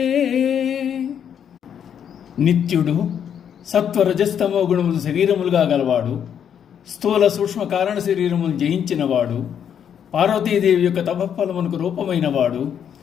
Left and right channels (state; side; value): quieter; right; 8.6 dB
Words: నిత్యుడు సత్వరజస్తమో గుణములు శరీరములుగా గలవాడు, స్థూల సూక్ష్మ కారణ శరీరములు జయించినవాడు, పార్వతీదేవి యొక్క తపఫలమునకు రూపమైనవాడు,